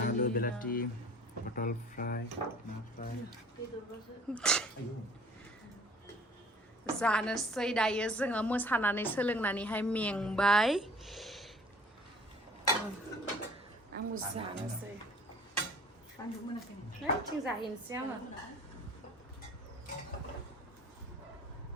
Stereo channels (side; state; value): both; normal; correlation 0.51